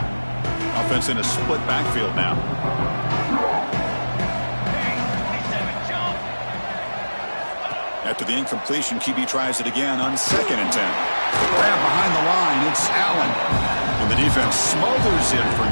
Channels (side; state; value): both; inverted; correlation -1.00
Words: Offense in a split backfield now. After the incompletion, QB tries it again on 2nd and 10. Grab behind the line, it's Allen. And the defense smothers him for